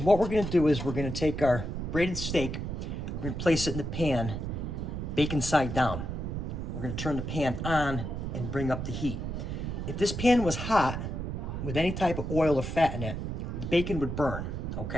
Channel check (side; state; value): right; noise; rumble, 4 dB below the sound